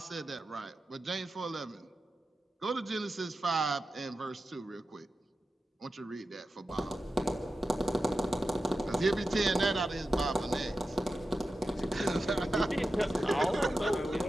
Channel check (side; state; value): both; normal; correlation 0.92